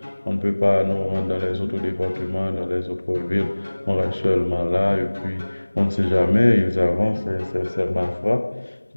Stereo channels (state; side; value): inverted; both; correlation -1.00